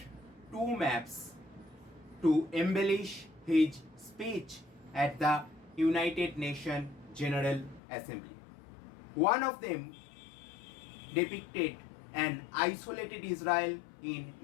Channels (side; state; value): right; drops out; at 7.8 s